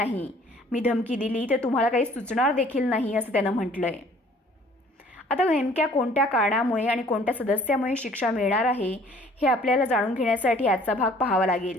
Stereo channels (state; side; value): normal; both; correlation 0.56